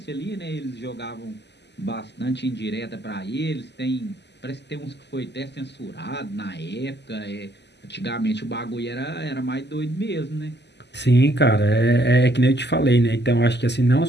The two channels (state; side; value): late; right; 0.50 ms